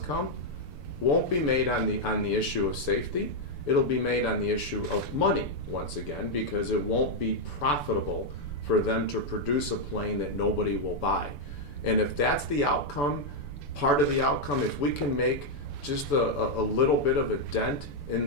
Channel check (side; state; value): right; late; 6.9 ms